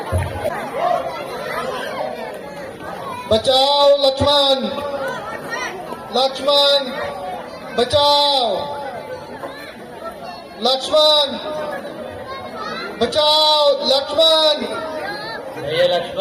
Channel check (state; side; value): identical; both; correlation 1.00